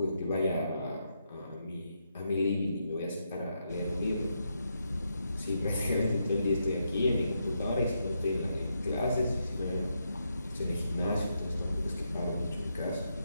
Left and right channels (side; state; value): both; inverted; correlation -0.81